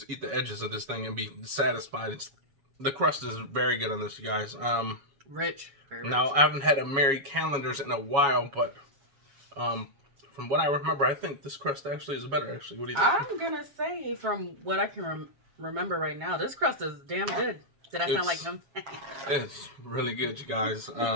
eat the edges of this thing and be satisfied. The crust is very good on this, you guys. Rich. Very now, rich. I haven't had a Mary Callender's in a while, but from what I remember, I think this crust actually is better, actually. What do you think? I'm going to say, from what I can remember right now, this crust is damn good. Did I sound like him? It's really good, you guys.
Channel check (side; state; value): left; late; 7.1 ms